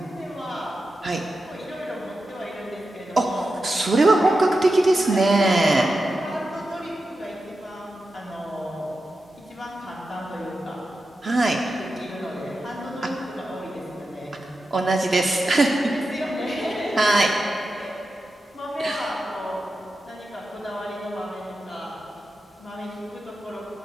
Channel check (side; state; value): both; normal; correlation 0.90